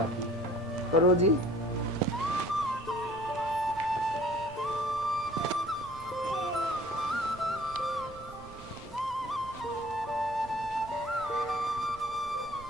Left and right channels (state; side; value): noise; right; rumble, 18 dB below the sound